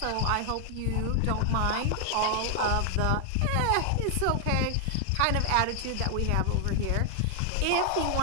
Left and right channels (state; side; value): different; both; correlation 0.00